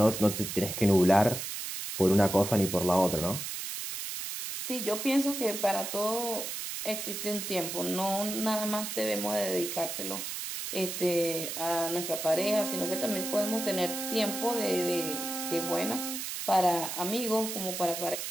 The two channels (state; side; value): noise; right; hiss, 5 dB below the sound